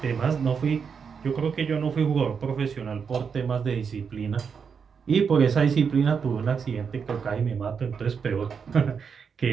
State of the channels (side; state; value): left; quieter; 6.3 dB